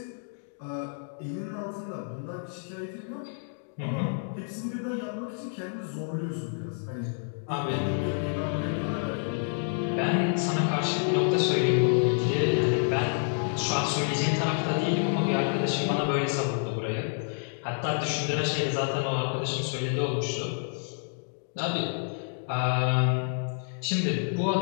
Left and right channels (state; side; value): silent; right; digital silence